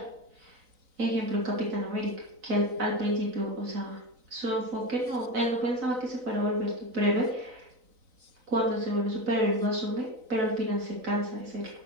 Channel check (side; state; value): left; late; 3.9 ms